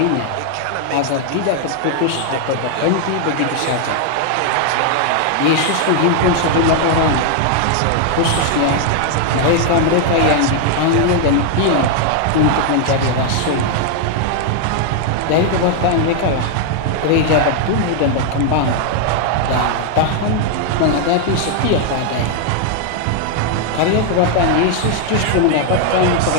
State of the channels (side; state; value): both; different; correlation 0.00